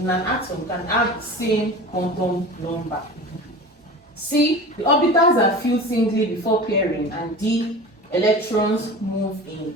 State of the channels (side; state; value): both; normal; correlation 0.34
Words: an atom can have the same quantum number. C, the orbitals are filled singly before pairing. And D, electrons move